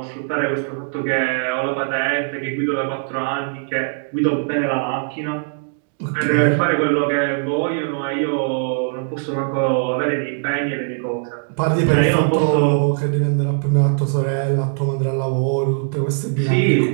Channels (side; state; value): left; silent; 63 dB below the other